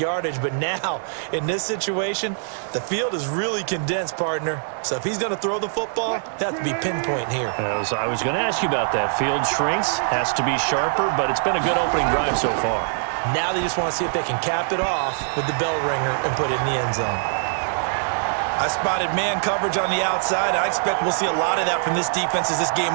But now, in this situation, the field is really condensed, partner. So if he's going to throw the football, they have to be pinpoint here. I was going to ask you about that. Field shrinks, has to be sharper, but it's been a good opening drive so far. Now they just want to see if they can cap it off with the bell ringer and put it in the end zone. I spotted man coverage on the outside. I expect we'll see a lot of that from this defense as this game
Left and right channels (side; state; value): left; silent; digital silence